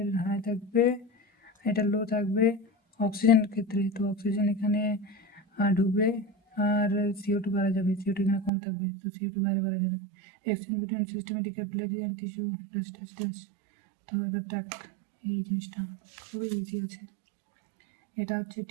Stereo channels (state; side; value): drops out; left; at 8.5 s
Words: high থাকবে, এটা লো থাকবে অক্সিজেনের ক্ষেত্রে। তো oxygen এখানে ঢুকবে আর CO2 বাড়া যাবে, CO2 এখানে কম থাকবে, তো CO2 বাইরে বাড়া যাবে। Exchange between systematic capillary and tissue dash. তো এবার দেখ এই জিনিসটা খুবই ইজি আছে। এটা হচ্ছে